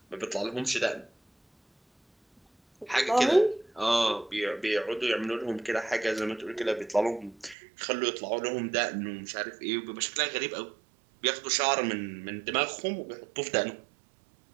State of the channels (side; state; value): left; drops out; at 7.6 s